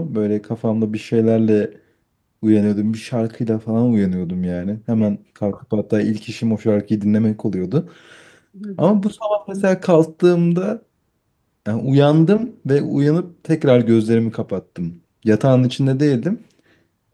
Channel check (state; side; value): identical; both; correlation 1.00